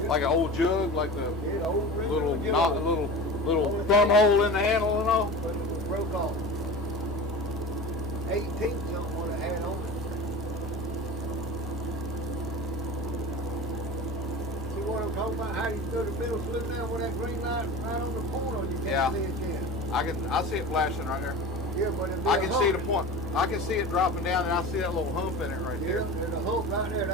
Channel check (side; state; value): both; normal; correlation 0.33